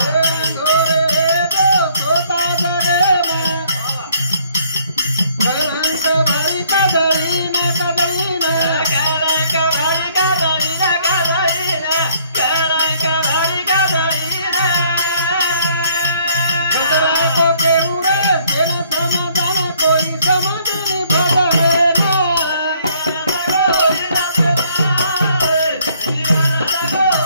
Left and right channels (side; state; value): both; inverted; correlation -0.63